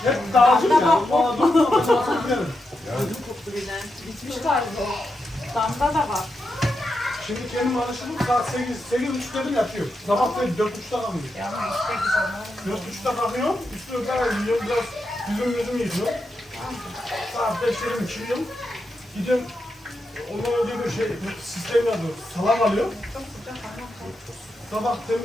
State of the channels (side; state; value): both; normal; correlation 0.86